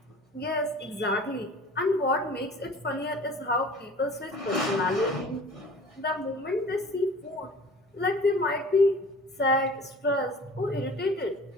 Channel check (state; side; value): normal; both; correlation 0.44